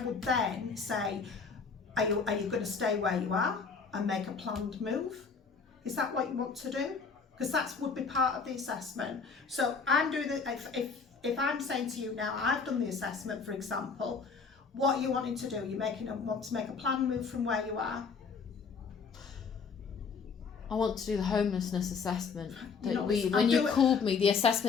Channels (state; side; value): quieter; right; 5.3 dB